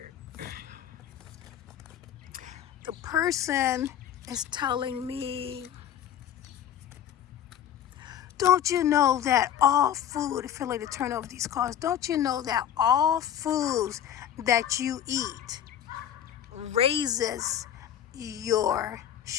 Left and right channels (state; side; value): quieter; right; 10.2 dB